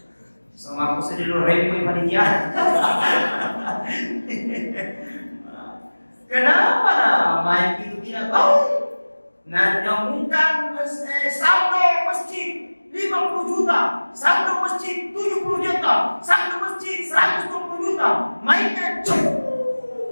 Sama aku sedih lu repot panitia. Kenapa main itu tidak tahu? Nah, nyambungkan saldo masjid 50 juta, saldo masjid 70 juta, saldo masjid 120 juta, mainnya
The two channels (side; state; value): both; inverted; correlation -1.00